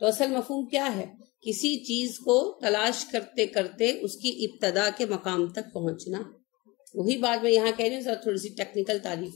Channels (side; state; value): right; quieter; 23.6 dB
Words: اصل مفہوم کیا ہے؟ کسی چیز کو تلاش کرتے کرتے اس کی ابتدا کے مقام تک پہنچنا۔ وہی بات میں یہاں کہہ رہی ہوں، ذرا تھوڑی سی ٹیکنیکل تعریف